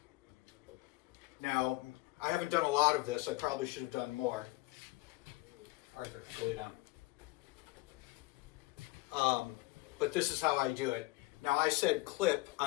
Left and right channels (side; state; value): right; quieter; 21.1 dB